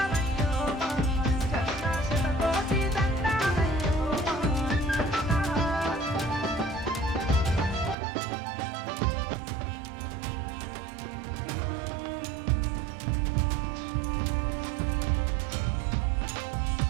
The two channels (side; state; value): left; drops out; at 8.0 s